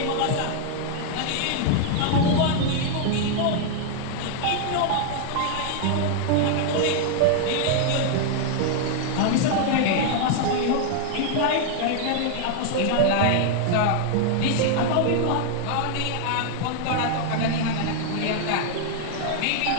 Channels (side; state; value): both; different; correlation 0.00